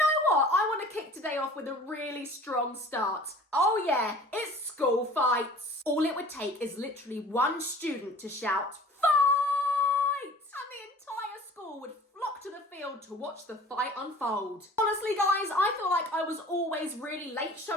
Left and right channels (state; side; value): normal; both; correlation 0.46